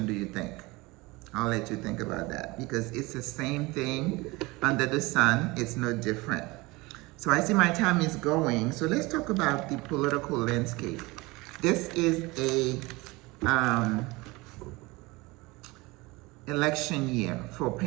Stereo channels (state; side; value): quieter; left; 22.9 dB